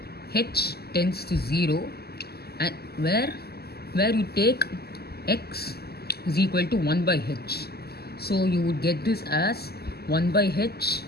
h tends to 0 and where you take x is equal to 1 by h. So you would get this as 1 by h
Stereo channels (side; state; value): right; late; 0.46 ms